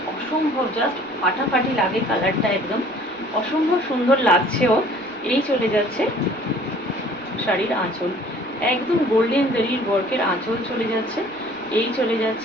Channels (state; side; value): noise; right; rumble, 29 dB below the sound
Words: অসম্ভব জাস্ট ফাটাফাটি লাগে কালারটা, একদম অসম্ভব সুন্দর লাগছেও। এই চলে যাচ্ছে শাড়ির আঁচল, একদম গোল্ডেন জারির ওয়ার্কের আঁচল চলে যাচ্ছে। এই চলে